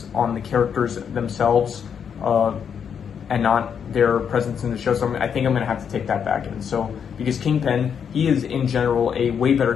on the characters themselves, and not their presence in the show. So I think I'm going to have to take that back. And so, because Kingpin, he is in general a way better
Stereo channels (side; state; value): right; quieter; 7.5 dB